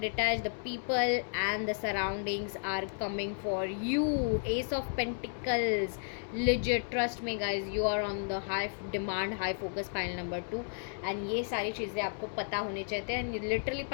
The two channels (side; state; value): right; silent; digital silence